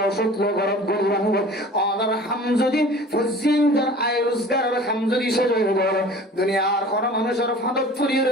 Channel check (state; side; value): normal; both; correlation 0.44